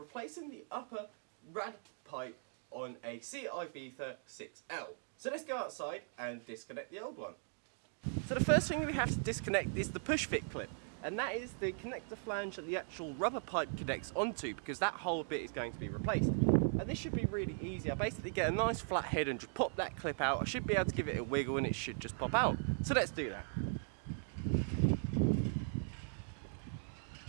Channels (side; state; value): left; silent; digital silence